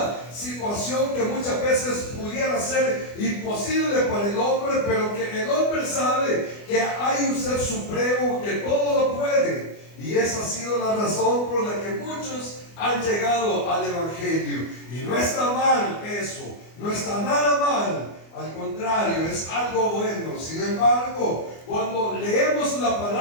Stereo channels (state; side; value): late; right; 24 ms